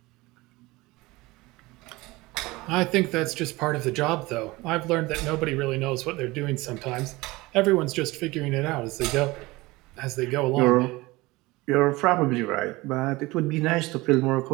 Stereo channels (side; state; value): left; quieter; 21.4 dB